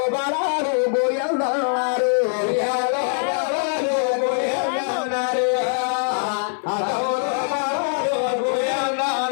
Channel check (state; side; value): silent; right; 59 dB below the other